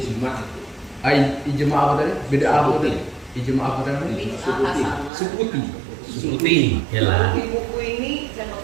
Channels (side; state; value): left; drops out; at 5.1 s